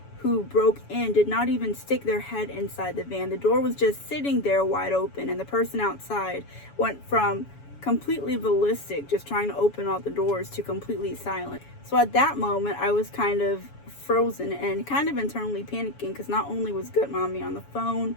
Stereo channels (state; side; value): late; right; 7.1 ms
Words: who broke in did not even stick their head inside the van. The door was just sitting there wide open, and the person outside went from completely ballistic, just trying to open all the doors, to completely silent. So at that moment, I was kind of frozen and kind of internally panicking because not only was Goodmommy on the phone,